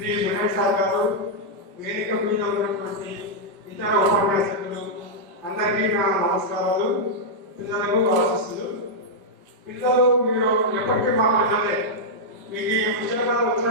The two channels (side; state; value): left; late; 5.1 ms